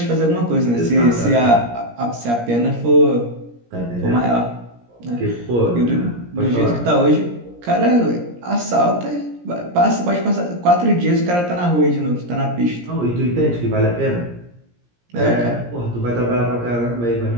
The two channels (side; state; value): left; late; 17 ms